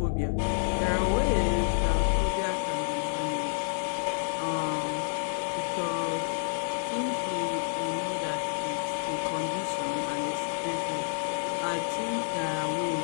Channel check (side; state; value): right; silent; digital silence